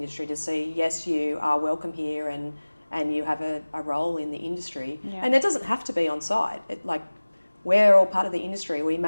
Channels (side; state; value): both; inverted; correlation -1.00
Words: to see, yes, you are welcome here, and you have a role in the industry. And it doesn't have to be on site. We're all part of the industry. We